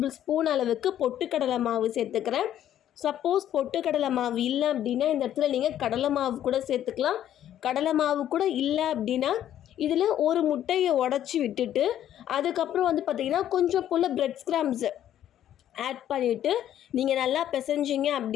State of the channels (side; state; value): right; quieter; 11.3 dB